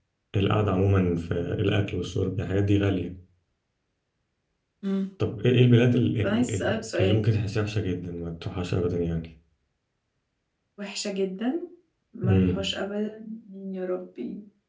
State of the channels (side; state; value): both; identical; correlation 1.00